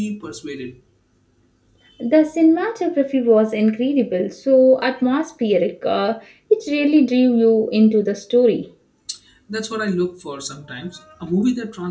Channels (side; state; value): both; identical; correlation 1.00